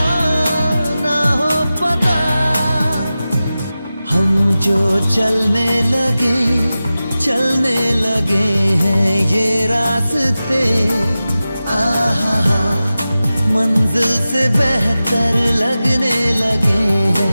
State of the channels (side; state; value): both; inverted; correlation -0.95